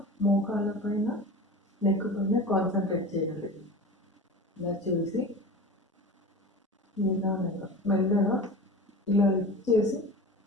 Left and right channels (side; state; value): both; normal; correlation 0.33